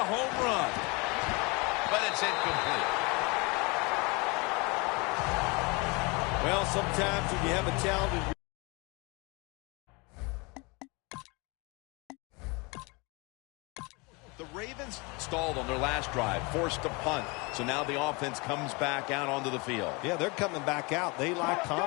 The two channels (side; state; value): right; quieter; 28.1 dB